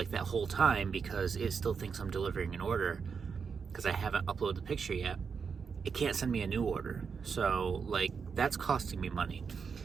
that whole time, because it still thinks I'm delivering an order because I haven't uploaded the picture yet, it can't send me a new order. So like that's costing me money.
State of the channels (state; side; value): quieter; left; 5.9 dB